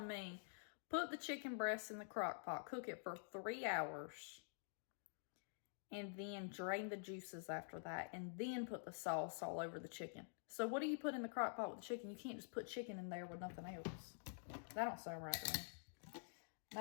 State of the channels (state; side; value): silent; right; digital silence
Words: me, put the chicken breast in the crock pot, cook it for 3 hours. And then drain the juices after that. And then put the sauce all over the chicken. So what do you put in the crock pot with the chicken? You can't just put chicken in there with nothing else. That don't sound right to me.